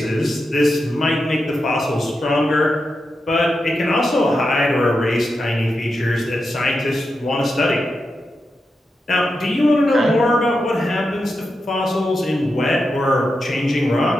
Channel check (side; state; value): both; normal; correlation 0.88